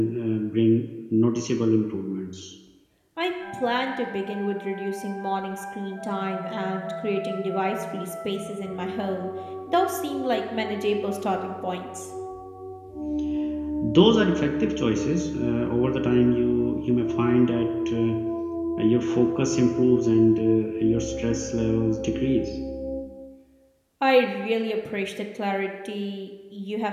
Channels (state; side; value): identical; both; correlation 1.00